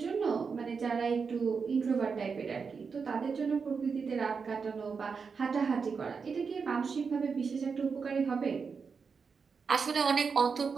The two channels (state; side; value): quieter; left; 5.5 dB